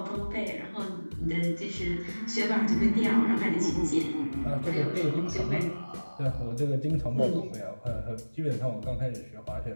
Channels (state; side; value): inverted; both; correlation -1.00